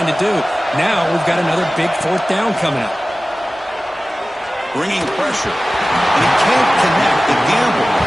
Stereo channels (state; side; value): normal; both; correlation 0.97